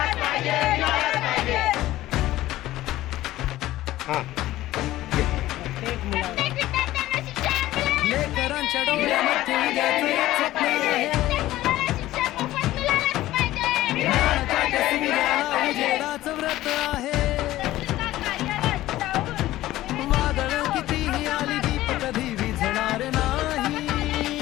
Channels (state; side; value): quieter; right; 15.6 dB